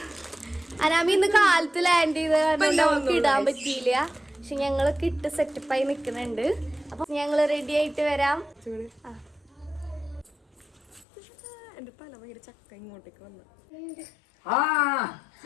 അനാമി ഇന്ന് കാലത്ത് ലാൻഡ് ചെയ്ത് കാരണം നമുക്ക് ഇടാൻ പറ്റിയില്ല. പക്ഷെ ഞങ്ങളൊക്കെ ഇട്ട് സെറ്റപ്പായി നിക്കുന്നുണ്ട്. അപ്പൊ ഞങ്ങള് റെഡി ആയിട്ട് വരാം. എന്റെ തല ഭയങ്കര ചക്ക ഇങ്ങോട്ടേക്ക് വന്നു.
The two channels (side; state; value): right; drops out; at 11.1 s